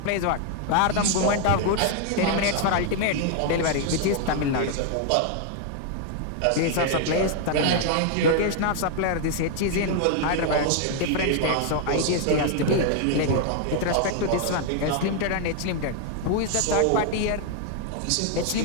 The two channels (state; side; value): different; both; correlation 0.00